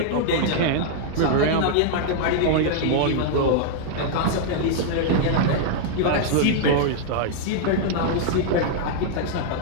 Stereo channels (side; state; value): both; different; correlation -0.01